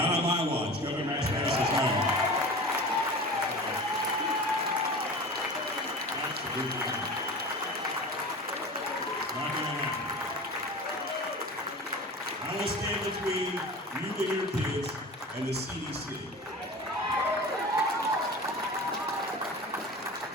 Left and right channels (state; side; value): normal; both; correlation 0.34